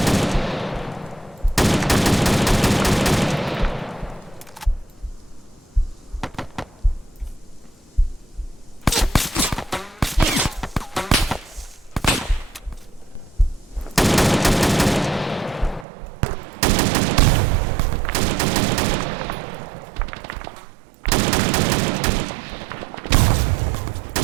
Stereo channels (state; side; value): drops out; left; at 15.9 s